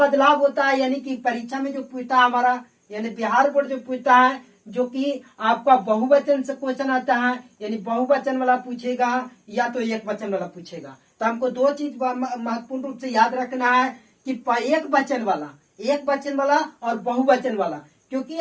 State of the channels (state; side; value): identical; both; correlation 1.00